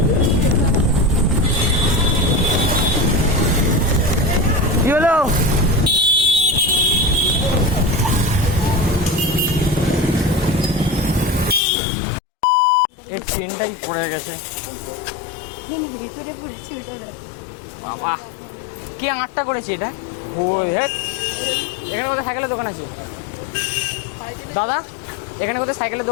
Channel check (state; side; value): drops out; right; at 11.6 s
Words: কি হলো এই চেনটাই পড়ে গেছে ভিতরে পড়েছে বাবা কি আটটা করেছে এটা ও এখানে কোথায় সাইকেলের দোকান আছে দাদা এখানে কোথায় সাইকেলের